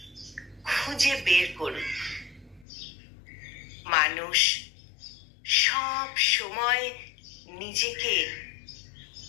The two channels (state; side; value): drops out; right; at 2.7 s